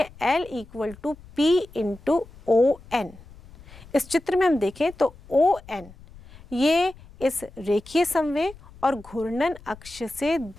L equal to P into ON। इस चित्र में हम देखें तो ON ये इस रेखीय संवेग और घूर्णन अक्ष से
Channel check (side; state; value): left; noise; rumble, 21 dB below the sound